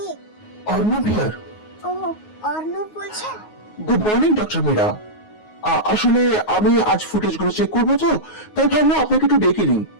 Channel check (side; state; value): right; late; 9.5 ms